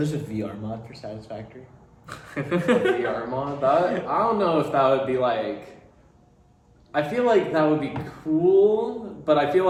a VR mod for Satisfactory. A VR mod, that, I don't know if that would be like, I feel like that would be cool, but I feel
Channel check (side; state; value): both; identical; correlation 1.00